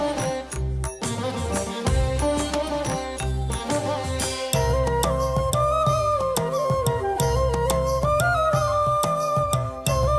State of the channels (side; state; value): both; identical; correlation 1.00